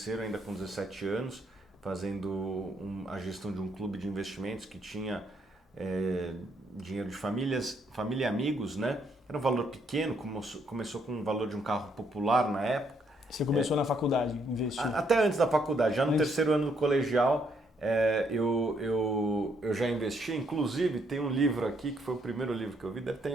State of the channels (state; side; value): normal; both; correlation 0.72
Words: ainda com 17 anos, fazendo a gestão de um clube de investimentos que tinha dinheiro de família e amigos, né? Era um valor pequeno, começou com o valor de um carro popular na época. Você começou na faculdade, investir? Até antes da faculdade, já no terceiro ano do colegial, eu já investi. Inclusive, tem um livro aqui, que foi o primeiro livro que eu vi, deve ter em